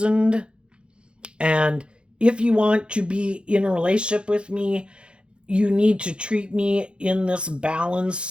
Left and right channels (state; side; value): late; left; 0.056 ms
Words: And if you want to be in a relationship with me, you need to treat me in this